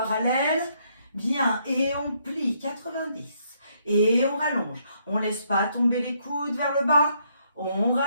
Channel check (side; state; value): both; inverted; correlation -0.72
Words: Bien. Et on plie 90. Et on rallonge. On ne laisse pas tomber les coudes vers le bas. On